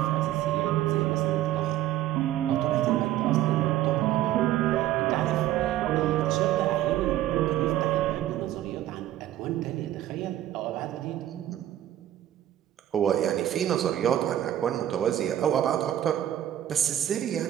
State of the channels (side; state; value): left; quieter; 12.8 dB